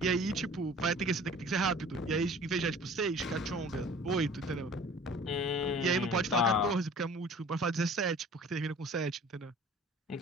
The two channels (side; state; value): both; normal; correlation 0.47